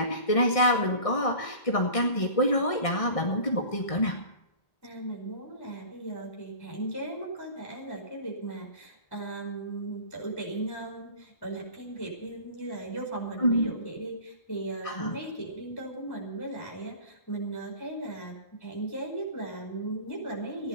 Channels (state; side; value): late; right; 1.6 ms